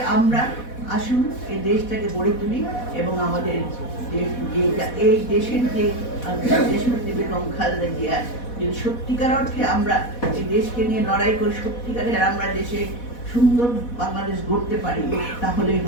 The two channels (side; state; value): right; late; 4.1 ms